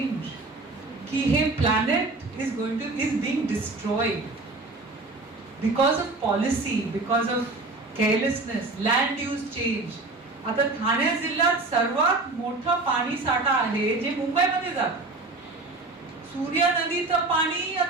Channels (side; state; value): left; quieter; 3.2 dB